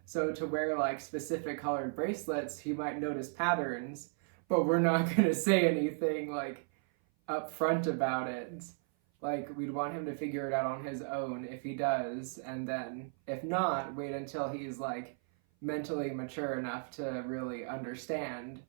so to wear, like, specific colored bracelets, he might notice patterns, but we're not going to say anything, like, up front about it. Like, we'd want him to figure it out on his own if he does, and then, if not, wait until he's, like, mentally mature enough to really understand.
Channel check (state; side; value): silent; left; 54 dB below the other